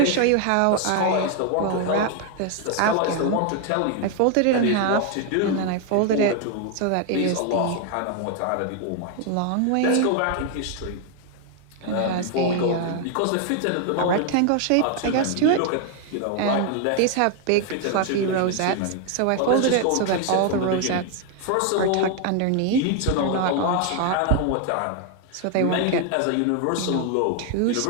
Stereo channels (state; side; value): different; both; correlation 0.01